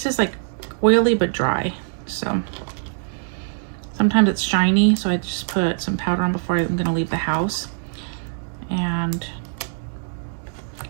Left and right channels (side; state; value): left; silent; digital silence